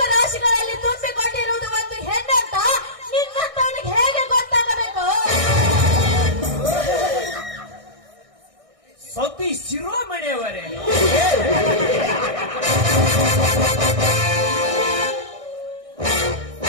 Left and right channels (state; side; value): late; left; 1.6 ms